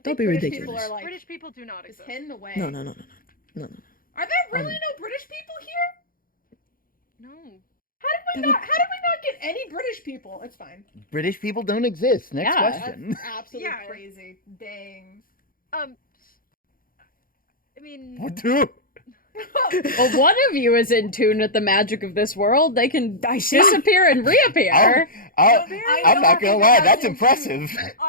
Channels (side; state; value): right; late; 0.41 ms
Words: Don't think be British ridiculous. People are like British people do not just exist. hidden away. No. Are there really no British people here? No. How did we not get any British people? It's fine. British people don't exist. Next Yeah. question. That's absolutely Yeah. crazy. Dang. I mean, What do? Well, one of you is in tune with the magic of this world. They can I see. disappear and reappear. I'm not gonna lie. That's impressive.